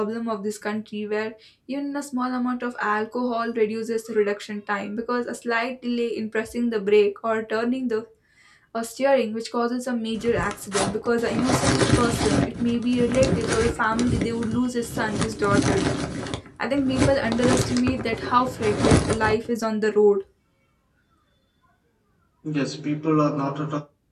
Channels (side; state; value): both; identical; correlation 1.00